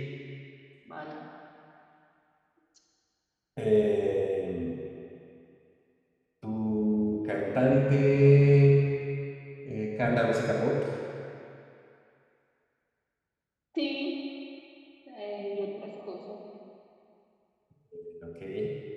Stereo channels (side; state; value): both; identical; correlation 1.00